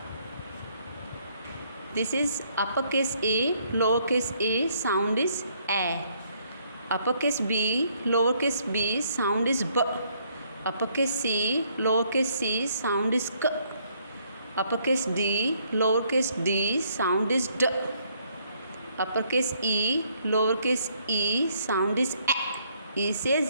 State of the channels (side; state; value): both; inverted; correlation -0.68